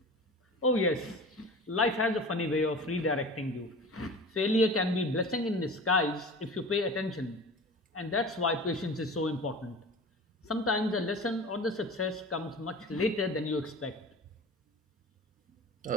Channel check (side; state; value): both; normal; correlation 0.36